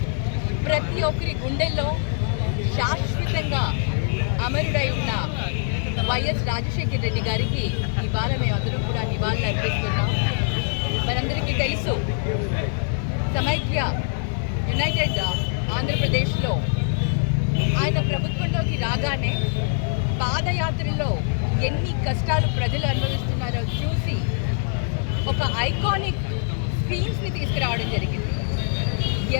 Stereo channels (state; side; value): silent; right; 56 dB below the other